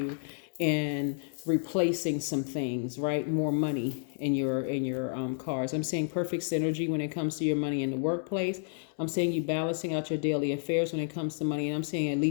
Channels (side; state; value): right; silent; digital silence